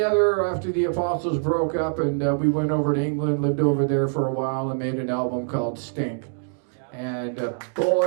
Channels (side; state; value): left; silent; digital silence